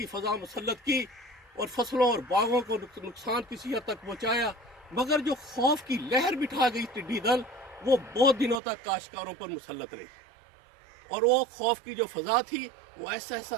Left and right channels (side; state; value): left; drops out; at 8.6 s